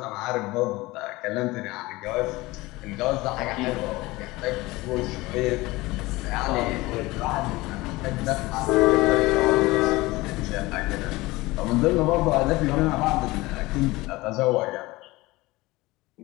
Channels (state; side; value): quieter; right; 20.7 dB